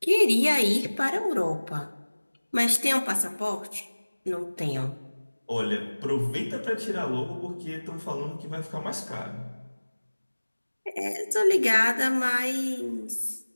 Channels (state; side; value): inverted; both; correlation -1.00